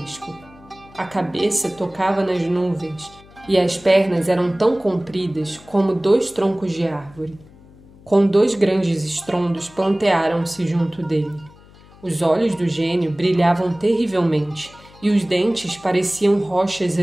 A cabeça tocava nas nuvens e as pernas eram tão compridas como 2 troncos de árvore. Com 2 grandes estrondos plantearam-se junto dele. Os olhos do gênio brilhavam terrivelmente e os dentes pareciam rochas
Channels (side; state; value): left; noise; hum, 24 dB below the sound